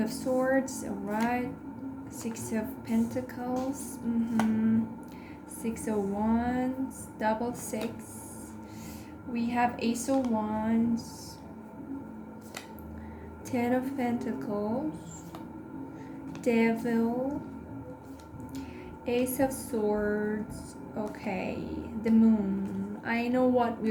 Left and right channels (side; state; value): both; identical; correlation 1.00